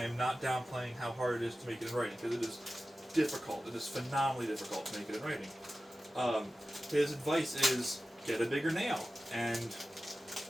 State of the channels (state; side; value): normal; both; correlation 0.94